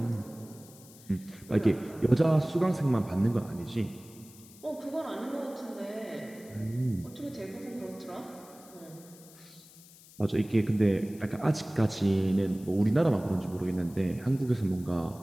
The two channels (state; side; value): noise; left; hiss, 22 dB below the sound